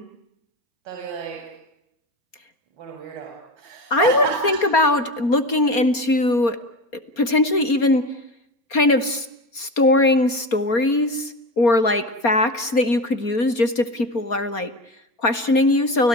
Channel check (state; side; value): late; right; 4.3 ms